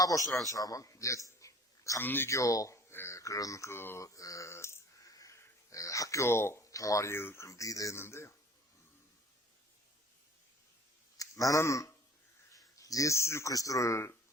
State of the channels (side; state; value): both; normal; correlation 0.50